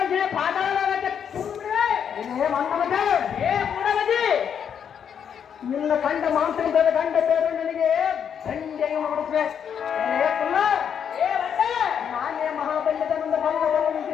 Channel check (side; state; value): right; quieter; 8.0 dB